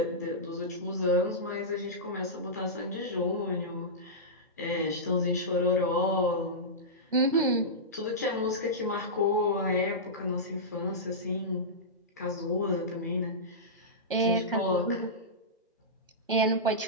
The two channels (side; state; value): both; normal; correlation -0.15